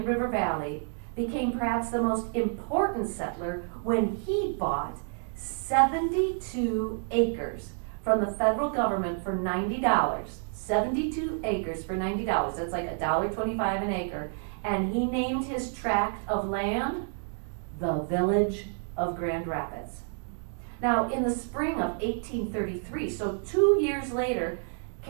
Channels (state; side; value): silent; left; 58 dB below the other